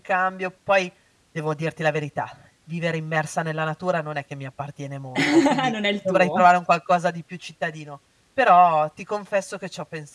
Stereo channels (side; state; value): both; identical; correlation 1.00